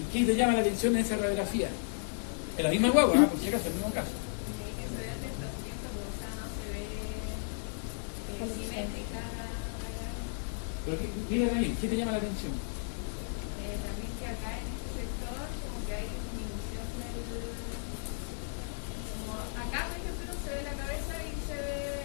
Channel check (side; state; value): right; silent; 55 dB below the other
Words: qué te llama la atención en esa radiografía? Es la misma guagua, por si acaso, el mismo caso. Pero mira ahí, ¿qué te llama la atención?